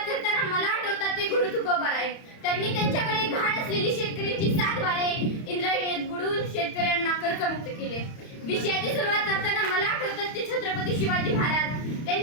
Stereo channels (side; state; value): right; late; 31 ms